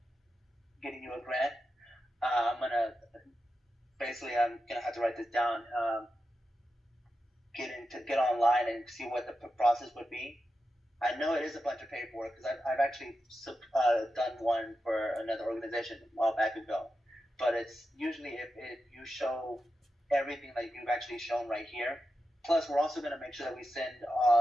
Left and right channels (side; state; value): both; normal; correlation 0.90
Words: getting you a grant. I'm gonna have to write this down. Get online and see what the process would be. I know it is a bunch of paperwork because I've actually done one for another organization a while back ago. But it's usually if you show everything that you've actually shown right here. Plus, we're also going to make sure that we send